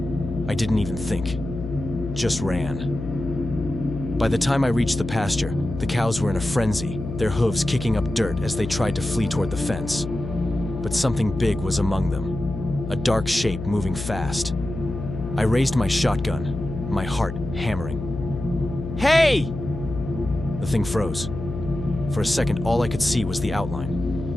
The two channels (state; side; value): noise; left; hum, 7 dB below the sound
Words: I didn't even think, just ran. By the time I reached the pasture, the cows were in a frenzy, their hooves kicking up dirt as they tried to flee toward the fence. But something big was among them, a dark shape moving fast. I raised my shotgun, my heart hammering. Hey! The thing froze. For a second, all I could see was the